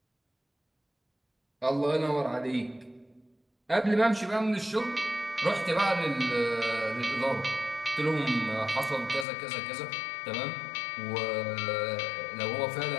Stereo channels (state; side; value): drops out; right; at 9.2 s